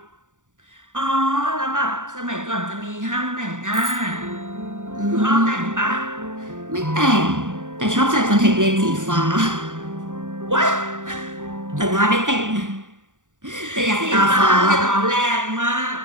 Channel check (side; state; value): left; late; 0.87 ms